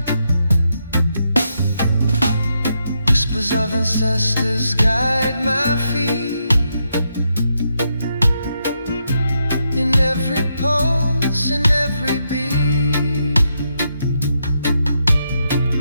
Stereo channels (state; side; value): inverted; both; correlation -0.81